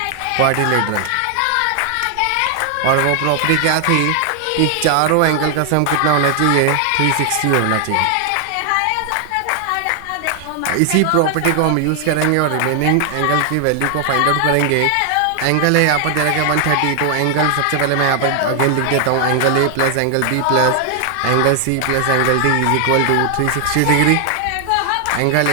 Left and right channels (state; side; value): different; both; correlation 0.00